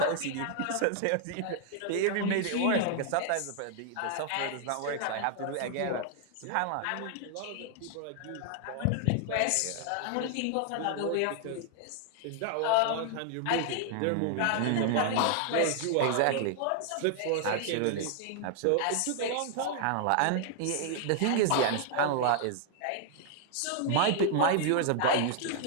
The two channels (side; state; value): both; different; correlation 0.00